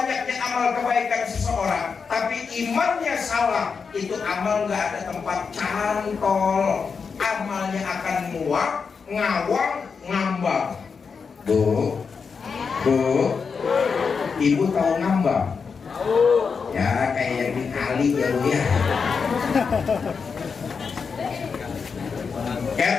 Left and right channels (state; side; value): quieter; right; 5.5 dB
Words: amal kebaikan seseorang, tapi imannya salah, itu amal nggak ada tempat cantol. Amalnya akan muak, ngawang, ngambang. Bu, ibu tahu ngambang? Ya kayak yang di kali ya bu ya.